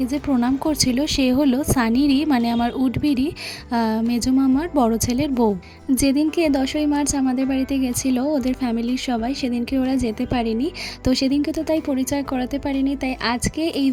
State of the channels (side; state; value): both; identical; correlation 1.00